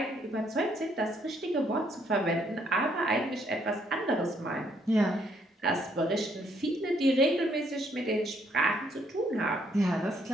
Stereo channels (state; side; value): normal; both; correlation 0.70